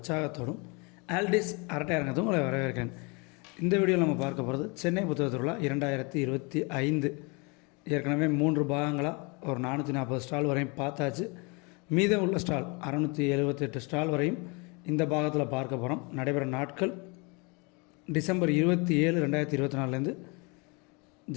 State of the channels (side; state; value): right; quieter; 30.4 dB